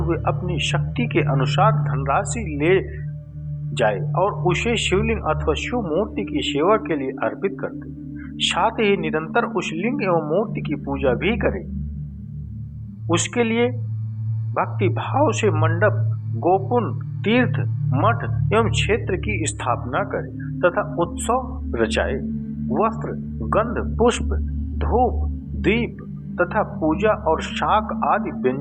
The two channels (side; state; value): both; identical; correlation 1.00